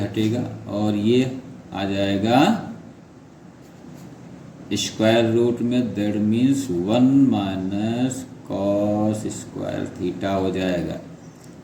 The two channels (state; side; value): identical; both; correlation 1.00